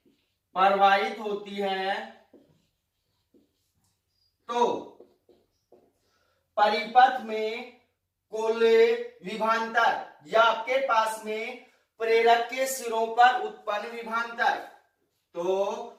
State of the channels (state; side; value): identical; both; correlation 1.00